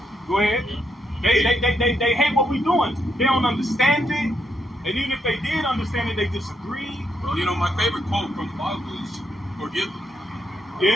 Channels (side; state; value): both; normal; correlation 0.78